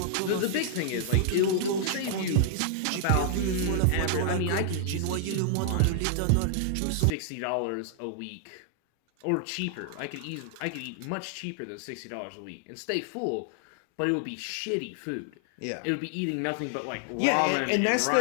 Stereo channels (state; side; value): different; both; correlation -0.01